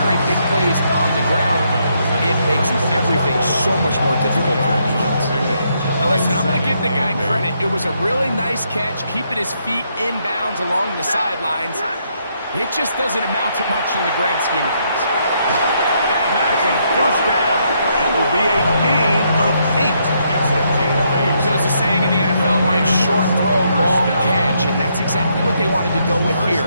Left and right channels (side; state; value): both; inverted; correlation -0.75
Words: big plays on the ground, it makes everything so much more difficult for the defense. Now listen, I'm going to give the guy credit. It was a really nice catch, keeping his feet inbounds along the sidelines. It just doesn't amount to much in the grand scheme of things. And that's a first down. It will be a gain of 8. It's a gain of 8. So there's a saying in the NFL, Mike, short throw, long catch, and that's exactly what they wanted to go with